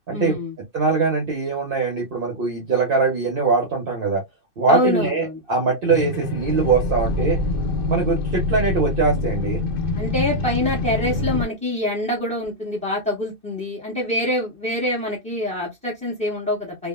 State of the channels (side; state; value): left; late; 2.6 ms